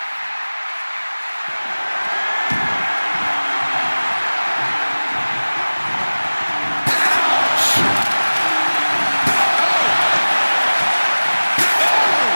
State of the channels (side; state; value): both; inverted; correlation -1.00